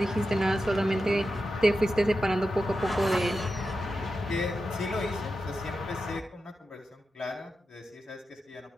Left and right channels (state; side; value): normal; both; correlation 0.90